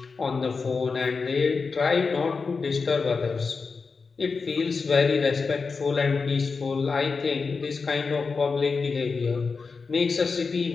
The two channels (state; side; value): quieter; right; 4.7 dB